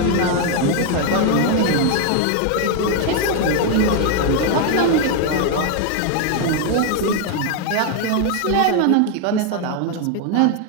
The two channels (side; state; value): both; different; correlation 0.01